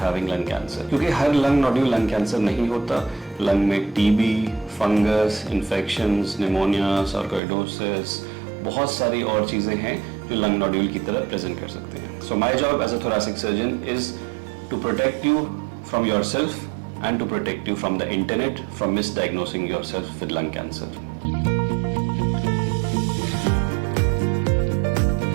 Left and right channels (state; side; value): drops out; left; at 7.4 s